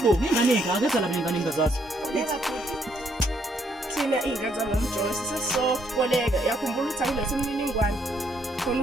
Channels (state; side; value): normal; both; correlation 0.71